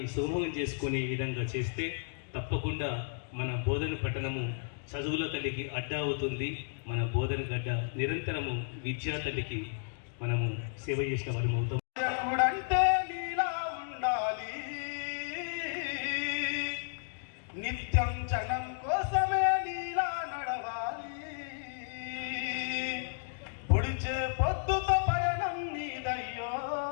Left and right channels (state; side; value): silent; right; digital silence